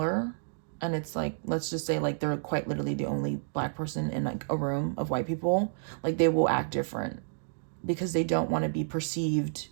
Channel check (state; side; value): silent; left; digital silence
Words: and it's like, let's just say like they're quite literally the only black person in like a room of white people, like they will act different because they don't want to be perceived